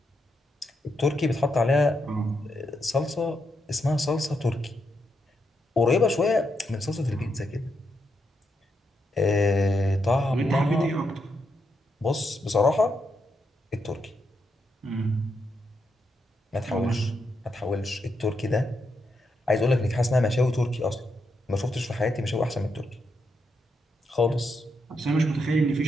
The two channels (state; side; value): normal; both; correlation 0.82